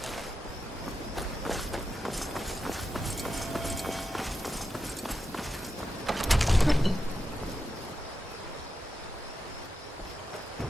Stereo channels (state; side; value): normal; both; correlation 0.88